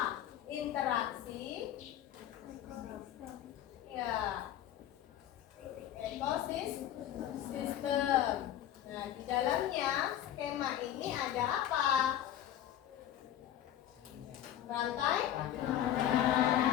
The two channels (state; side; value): quieter; right; 11.6 dB